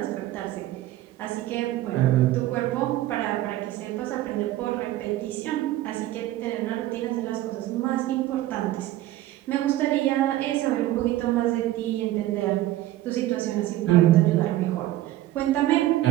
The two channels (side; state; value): left; quieter; 14.9 dB